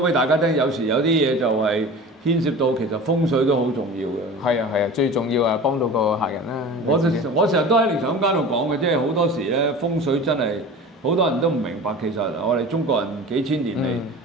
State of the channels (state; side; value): normal; both; correlation 0.36